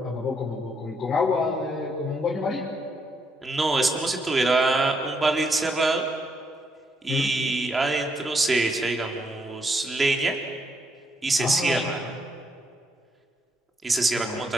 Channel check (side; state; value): both; normal; correlation 0.76